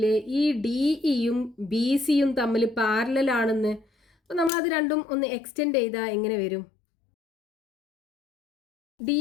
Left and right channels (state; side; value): drops out; right; at 4.5 s